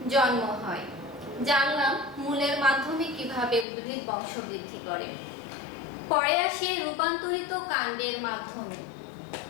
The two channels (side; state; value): right; drops out; at 3.7 s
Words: জন্ম হয়। জানলাম মূলের মাধ্যমে কিভাবে উদ্ভিদ বংশবৃদ্ধি করে। পরে আসে রূপান্তরিত কাণ্ডের মাধ্যমে।